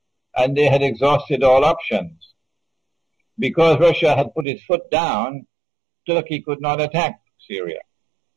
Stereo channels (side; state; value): left; drops out; at 4.5 s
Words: and they had exhausted all options. Because Russia had put its foot down, Turkey could not attack Syria.